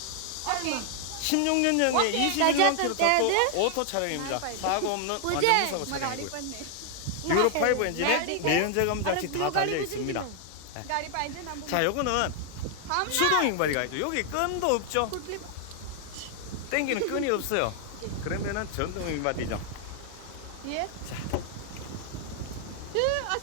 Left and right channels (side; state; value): both; different; correlation 0.00